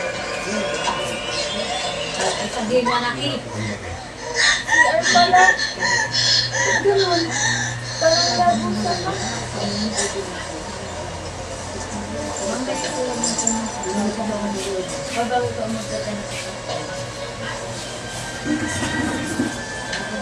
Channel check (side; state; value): both; identical; correlation 1.00